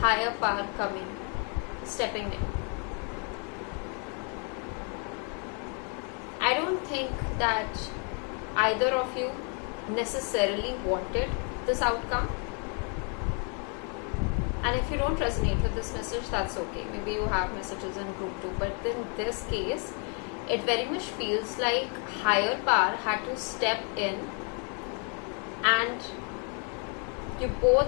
power stepping in. I don't think that either of you necessarily wanted this outcome. And if you don't resonate with this message, that's okay. Maybe you have messages in group 2. But in this case, it very much feels like higher power had to step in, and you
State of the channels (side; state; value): right; quieter; 38.9 dB